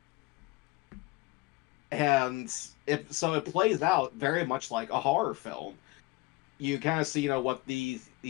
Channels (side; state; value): right; quieter; 22.0 dB